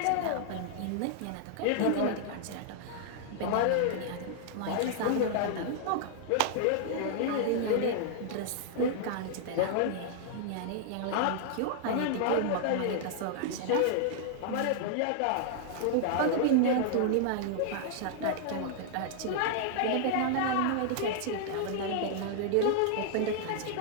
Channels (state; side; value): different; both; correlation -0.01